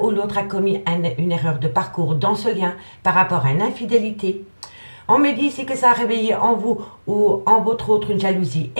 l'autre a commis une erreur de parcours dans ce lien par rapport à une infidélité. On me dit ici que ça a réveillé en vous ou en votre autre une jalousie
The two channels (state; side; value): inverted; both; correlation -1.00